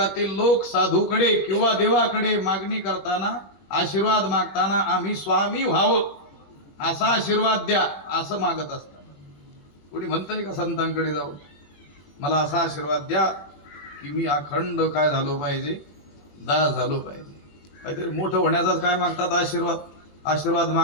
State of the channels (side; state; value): right; late; 21 ms